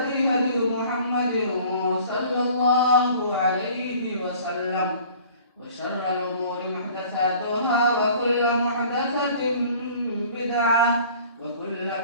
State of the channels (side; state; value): both; inverted; correlation -0.49